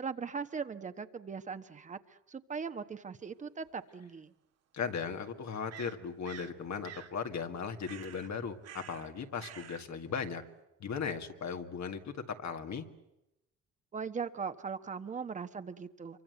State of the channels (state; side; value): normal; both; correlation 0.09